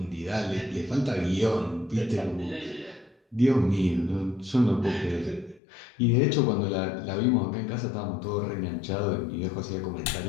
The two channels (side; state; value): right; drops out; at 5.6 s